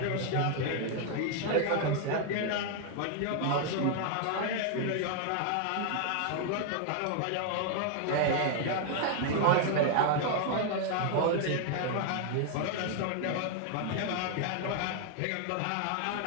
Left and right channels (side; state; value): both; different; correlation 0.00